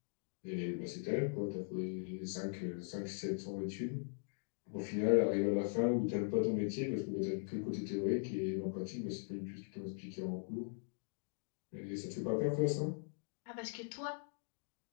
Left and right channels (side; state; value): right; silent; digital silence